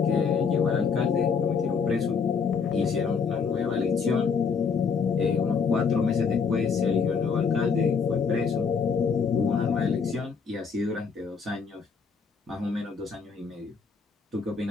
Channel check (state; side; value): quieter; right; 5.7 dB